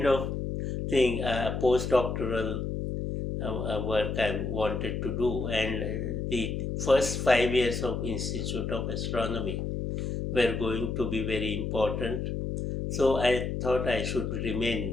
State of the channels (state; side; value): noise; left; hum, 3 dB below the sound